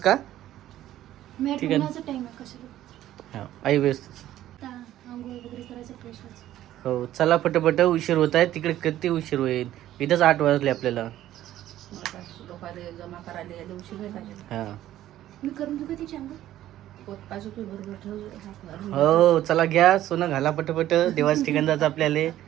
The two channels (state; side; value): quieter; left; 13.2 dB